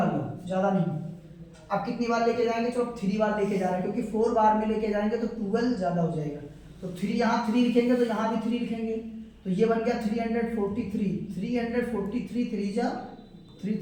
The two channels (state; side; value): identical; both; correlation 1.00